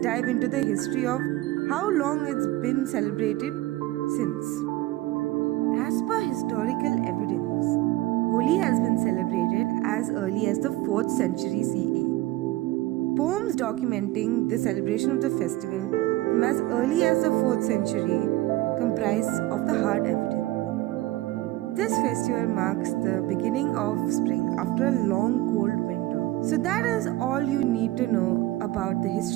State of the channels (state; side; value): quieter; left; 17.5 dB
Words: into the history of how long it's been celebrated since. As per historical evidence, Holi has been celebrated as early as the 4th century CE. Poems documenting the celebration of the festival from as early as the 4th century comprise of the hard evidence. This festival marks the beginning of spring after a long cold winter. So that is all you need to know about the